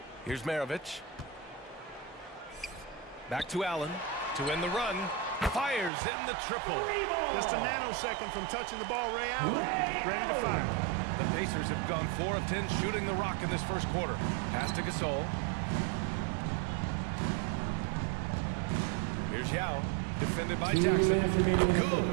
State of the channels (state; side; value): drops out; left; at 5.9 s